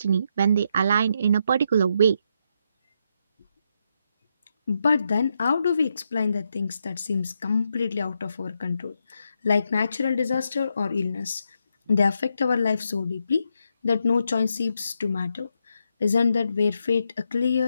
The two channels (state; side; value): inverted; both; correlation -0.81